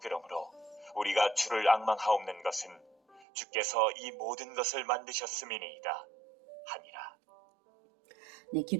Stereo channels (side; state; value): left; drops out; at 3.2 s